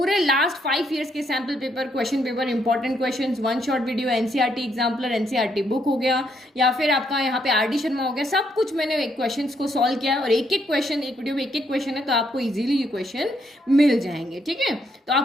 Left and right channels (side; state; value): both; normal; correlation 0.74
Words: लास्ट 5 ईयर्स के sample paper, question paper, important questions, 1 short video, NCERT exemplar, NCERT book हो गया, या फिर आपका यहाँ पे आरडी शर्मा हो गया, सब कुछ मैंने क्वेश्चन को सॉल्व किया है। और एक एक क्वेश्चन, एक वीडियो में एक एक क्वेश्चन है, तो आपको इजीली ये क्वेश्चन मिल जाएंगे। ठीक है, तो